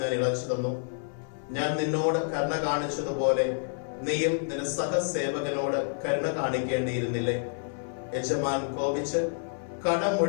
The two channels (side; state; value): right; silent; 59 dB below the other